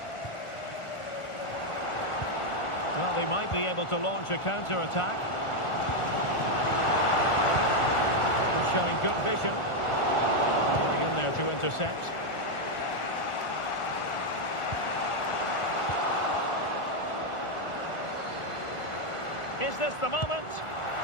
Well, they might be able to launch a counter-attack. Showing good vision. Getting in there to intercept. Is this the moment?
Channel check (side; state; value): right; late; 1.4 ms